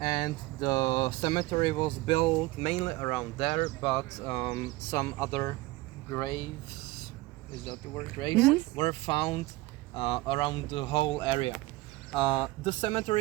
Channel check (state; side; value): quieter; left; 19.9 dB